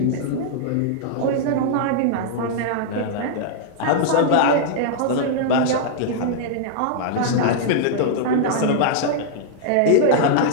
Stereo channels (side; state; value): both; different; correlation -0.01